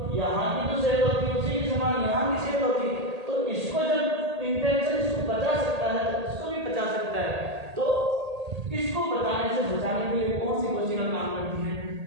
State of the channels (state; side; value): late; left; 1.8 ms